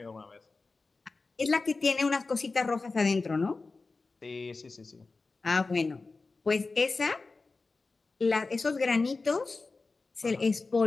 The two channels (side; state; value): right; quieter; 3.8 dB